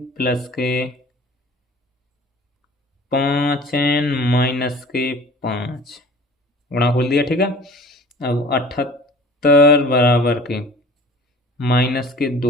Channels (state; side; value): normal; both; correlation 0.45